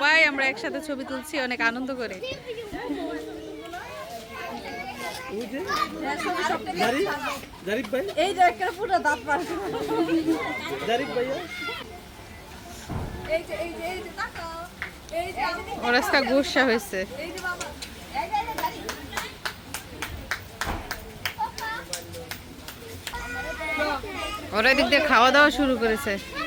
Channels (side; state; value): both; identical; correlation 1.00